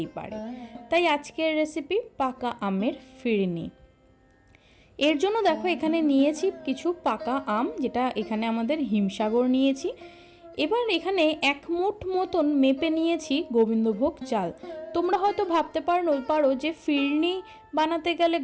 পারে। তাই আজকের রেসিপি পাকা আমের ফিরনি। এর জন্য দেখো এখানে নিয়েছি কিছু পাকা আম, যেটা এখানে আমাদের হিমসাগর নিয়েছি। এবার এখানে 1 মুঠ মতন মেপে নিয়েছি গোবিন্দভোগ চাল। তোমরা হয়তো ভাবতে পারো যে ফিরনি বানাতে গেলে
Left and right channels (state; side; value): identical; both; correlation 1.00